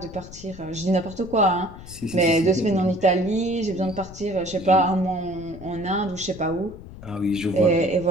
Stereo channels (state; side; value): noise; left; rumble, 16 dB below the sound